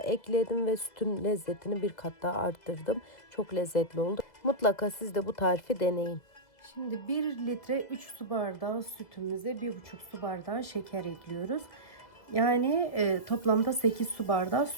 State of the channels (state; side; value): late; right; 2.0 ms